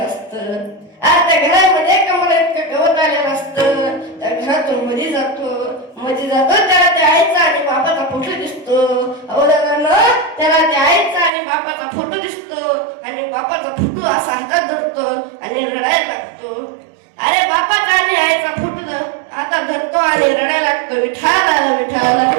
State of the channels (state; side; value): drops out; left; at 11.3 s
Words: असतं. त्या घरामध्ये कमरा इतकं गवत आलेलं असतं. त्या घरातून मध्ये जातो त्याला त्या आईचा आणि बाबाचा फोटो दिसतो. त्याला त्या